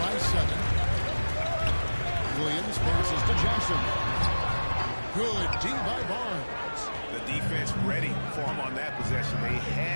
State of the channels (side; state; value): both; inverted; correlation -1.00